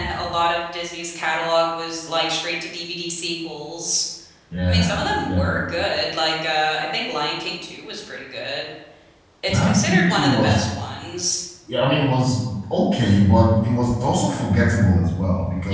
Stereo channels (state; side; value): identical; both; correlation 1.00